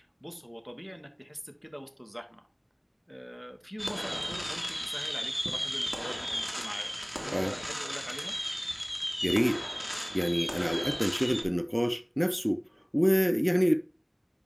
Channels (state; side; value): identical; both; correlation 1.00